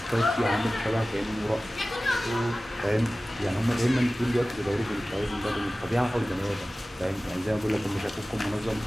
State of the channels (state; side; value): normal; both; correlation 0.97